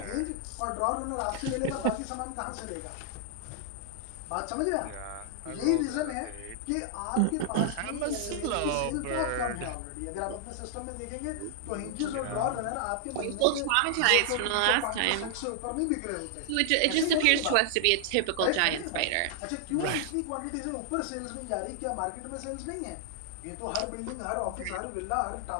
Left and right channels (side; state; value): both; different; correlation -0.01